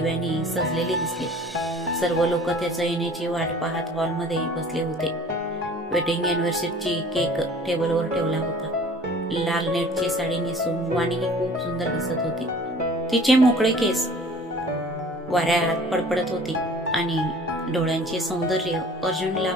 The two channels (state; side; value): normal; both; correlation 0.48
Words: सजलेले दिसले. सर्व लोक त्याच्या येण्याची वाट पाहत हॉलमध्ये बसले होते. वेडिंग अॅनिव्हर्सरीची केक टेबलवर ठेवला होता. लाल नेटची साडी नेसून वाणी ही खूप सुंदर दिसत होती. तिचे मोकळे केस वाऱ्यात पडपडत होती आणि डोळ्यांचे सौंदर्य अर्जुनला